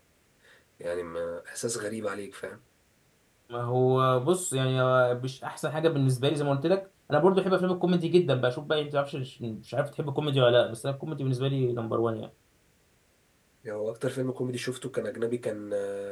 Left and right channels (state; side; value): identical; both; correlation 1.00